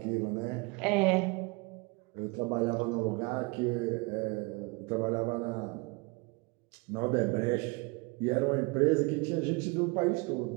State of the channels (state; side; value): quieter; left; 27.8 dB